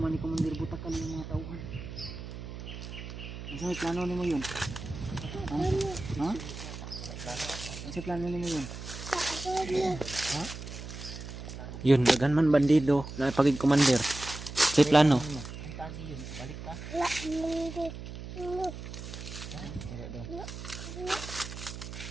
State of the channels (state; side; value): noise; right; hum, 10 dB below the sound